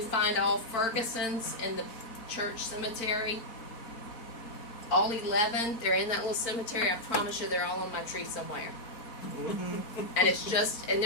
find all Fergusons in the church cemetery. All 11, they're in that little cemetery. I promise you they're all on my tree somewhere. And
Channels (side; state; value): right; late; 4.4 ms